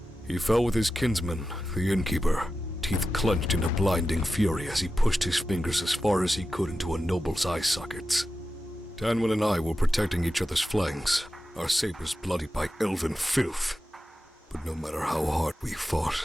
He fell with his kinsman, the innkeeper, teeth clenched in a blinding fury as he pushed his fingers as far as he could into a noble's eye sockets. Tanwin and I were protecting each other's flanks, our sabers bloodied by elven filth. But no matter how hard we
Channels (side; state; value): both; normal; correlation 0.92